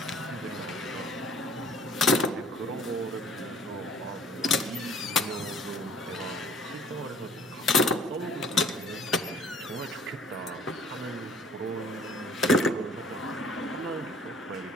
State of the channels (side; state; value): both; normal; correlation 0.54